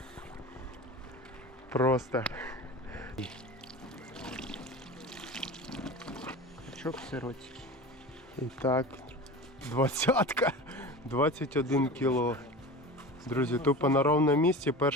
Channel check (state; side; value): normal; both; correlation 0.32